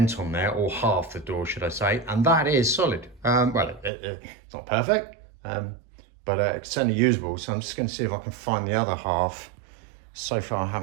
on there, or half the door, should I say, and that is solid. Well, it's not perfect, but it's certainly usable. So I'm just going to see if I can find the other half. So far, I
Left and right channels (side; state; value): left; drops out; at 3.9 s